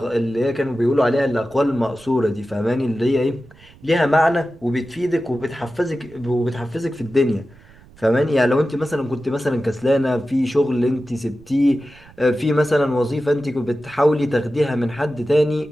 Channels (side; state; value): right; noise; rumble, 25 dB below the sound